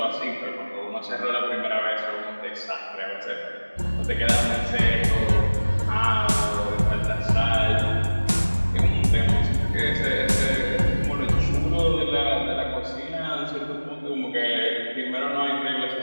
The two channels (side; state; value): both; inverted; correlation -1.00